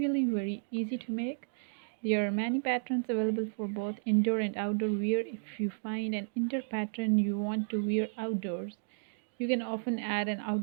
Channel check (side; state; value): left; silent; digital silence